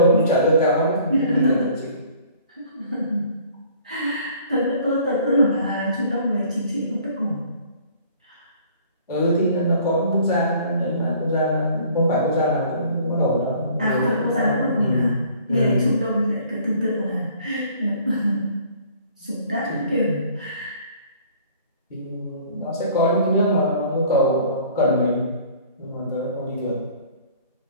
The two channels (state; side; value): inverted; both; correlation -0.54